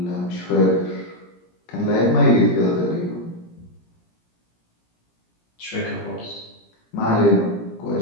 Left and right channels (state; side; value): late; right; 17 ms